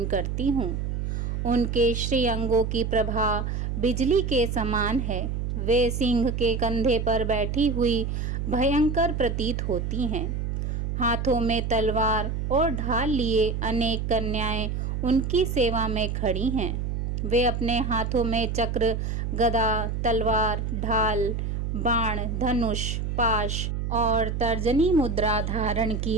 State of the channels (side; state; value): right; noise; hum, 2 dB below the sound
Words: करती हूँ। उनके श्री अंगों की प्रभा बिजली के समान है। वे सिंह के कंधे पर बैठी हुई भयंकर प्रतीत होती हैं। हाथों में तलवार और ढाल लिए अनेक कन्याएं उनकी सेवा में खड़ी हैं। वे अपने हाथों में चक्र, गदा, तलवार, ढाल, बाण, धनुष, पाश और तर्जनी मुद्रा धारण